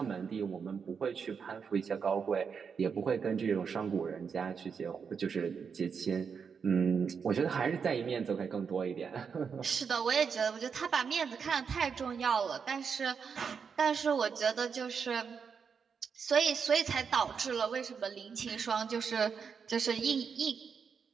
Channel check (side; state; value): left; quieter; 6.2 dB